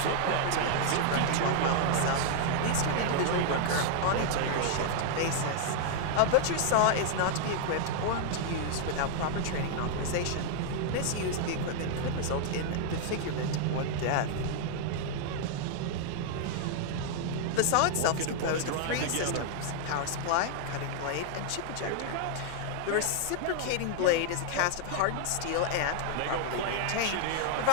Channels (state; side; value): different; both; correlation -0.01